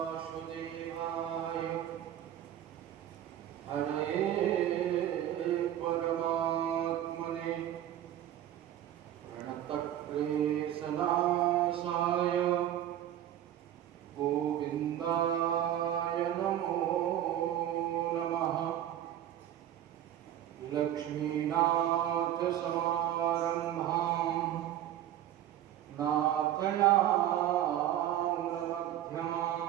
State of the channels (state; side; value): quieter; left; 11.8 dB